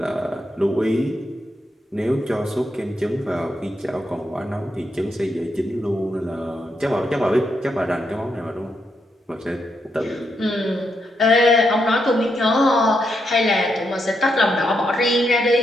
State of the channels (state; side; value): normal; both; correlation 0.81